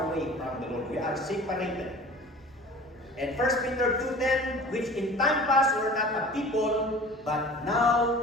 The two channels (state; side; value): normal; both; correlation 0.42